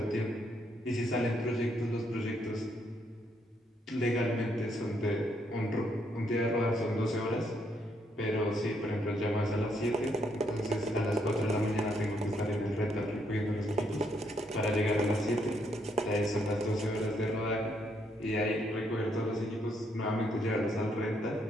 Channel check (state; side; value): normal; both; correlation 0.74